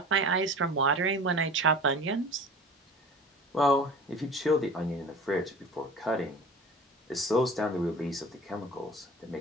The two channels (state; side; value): normal; both; correlation 0.39